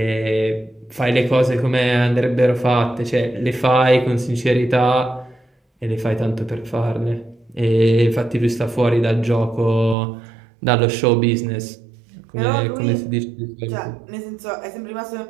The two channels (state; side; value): drops out; left; at 10.0 s